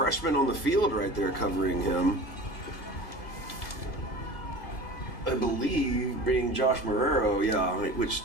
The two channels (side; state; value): right; late; 1.9 ms